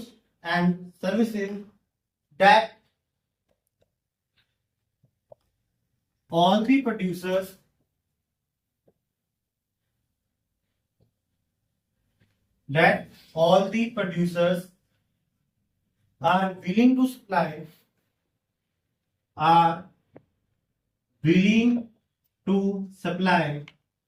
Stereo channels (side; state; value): both; identical; correlation 1.00